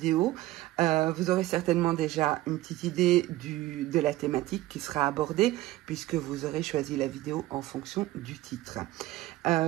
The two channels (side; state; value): left; quieter; 16.8 dB